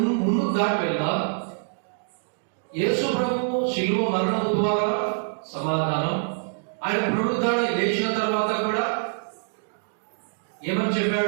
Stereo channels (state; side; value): silent; left; digital silence